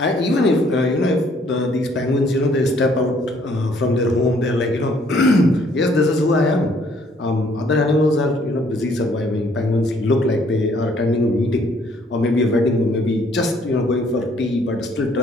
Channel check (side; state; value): both; normal; correlation 0.63